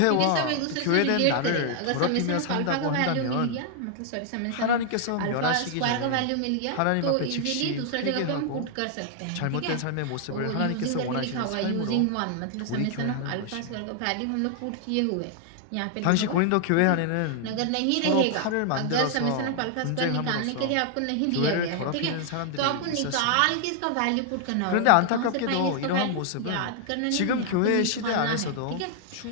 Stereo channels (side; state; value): both; different; correlation 0.00